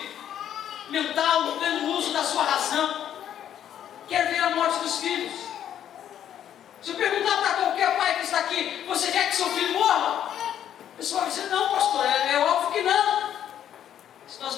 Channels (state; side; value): quieter; right; 10.2 dB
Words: mental, no pleno uso da sua razão, quer ver a morte dos filhos. Se eu perguntar para qualquer pai que está aqui: você quer que seu filho morra? A pessoa vai dizer: não, pastor, é óbvio que não. Se nós